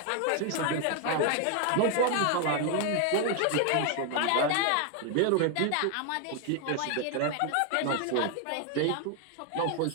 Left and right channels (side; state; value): both; different; correlation 0.00